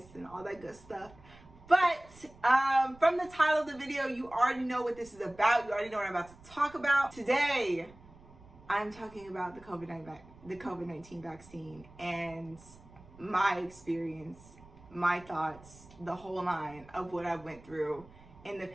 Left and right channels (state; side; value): noise; right; rumble, 22 dB below the sound